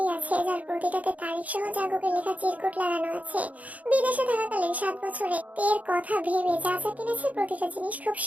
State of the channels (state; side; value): late; left; 0.073 ms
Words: আছে যার প্রতিটাতে তারিখ সহ জাঙ্কুকের লেখা চিরকুট লাগানো আছে। বিদেশে থাকাকালীন 7 বছরে তের কথা ভেবে যা যা কিনেছে প্রতিটা জিনিস খুব